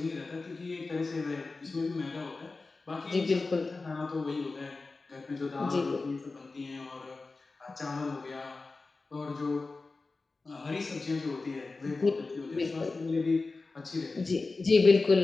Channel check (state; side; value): quieter; right; 3.7 dB